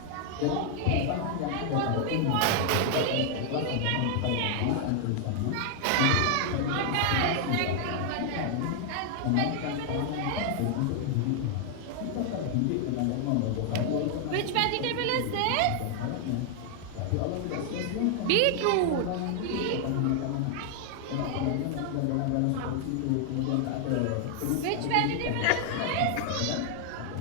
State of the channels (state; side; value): different; both; correlation 0.00